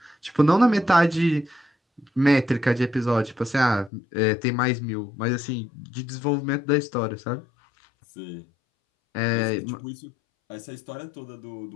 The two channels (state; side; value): drops out; right; at 3.9 s